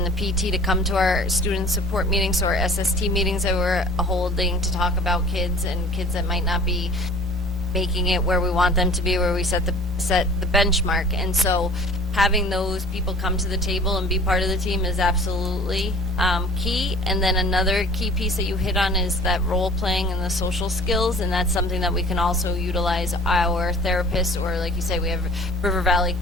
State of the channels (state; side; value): normal; both; correlation 0.45